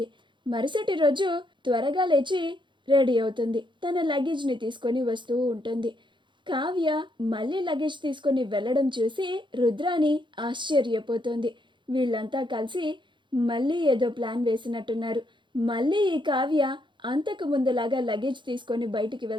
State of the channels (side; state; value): left; late; 0.23 ms